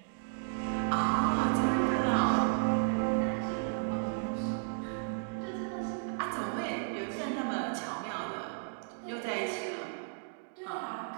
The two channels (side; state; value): left; silent; digital silence